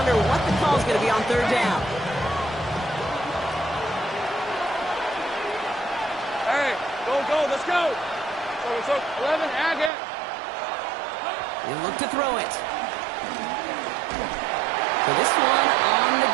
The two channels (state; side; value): drops out; left; at 9.9 s